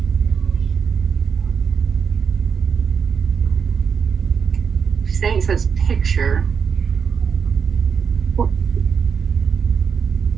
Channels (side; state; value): left; quieter; 6.5 dB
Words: She's saying it says picture.